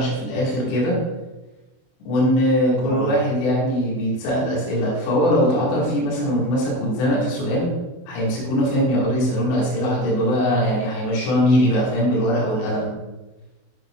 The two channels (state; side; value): late; right; 24 ms